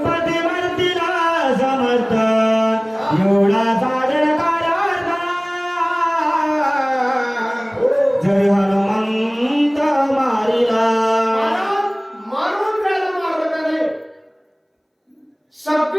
मरतीला समर्थ एवढा साधन कार्यार्थ जरी हनुमंत मारिला. महाराज, मारून त्याला मारलं का नाही?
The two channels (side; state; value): both; identical; correlation 1.00